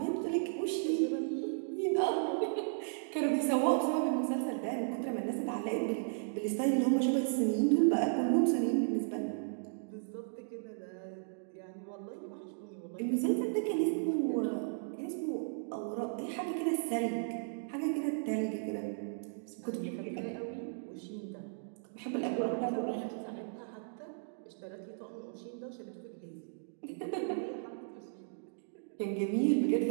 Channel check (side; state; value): left; silent; digital silence